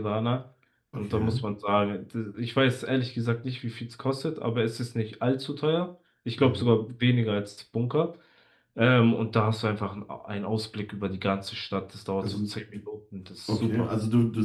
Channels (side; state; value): both; identical; correlation 1.00